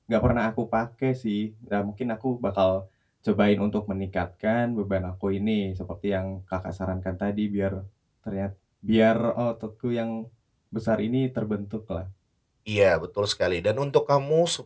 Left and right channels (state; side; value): identical; both; correlation 1.00